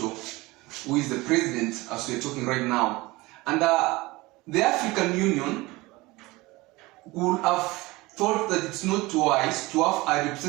who is the president as we are talking right now. And the African Union would have thought that it's not wise to have a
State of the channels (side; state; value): left; quieter; 21.5 dB